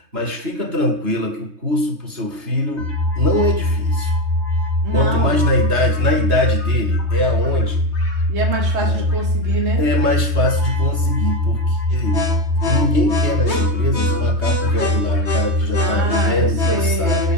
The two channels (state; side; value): late; left; 3.2 ms